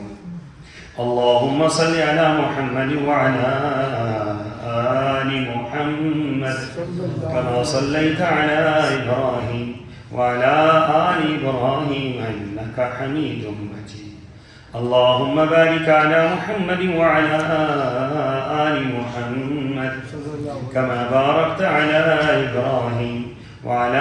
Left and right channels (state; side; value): identical; both; correlation 1.00